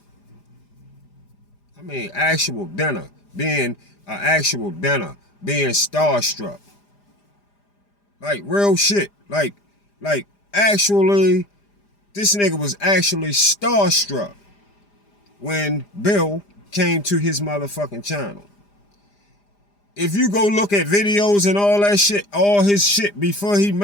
I mean, actual dinner. Being being starstruck. Like, real shit. Like, actually, this nigga was actually starstruck when Bill came to his motherfucking channel. If you go look at videos and all that shit, all his shit before he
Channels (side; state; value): right; late; 4.9 ms